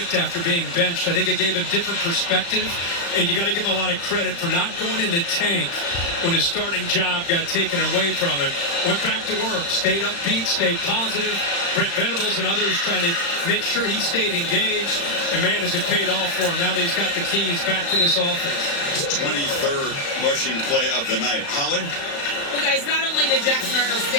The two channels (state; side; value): late; right; 36 ms